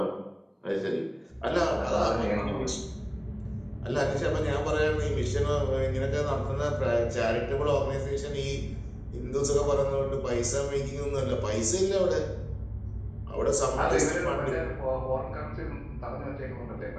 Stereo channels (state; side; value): identical; both; correlation 1.00